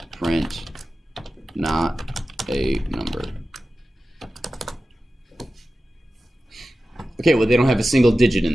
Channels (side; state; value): both; normal; correlation 0.94